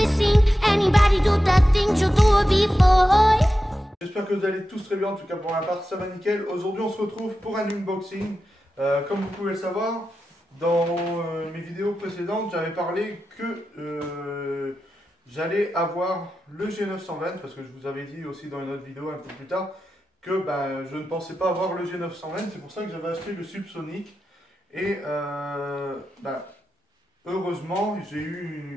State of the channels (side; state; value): both; normal; correlation 0.91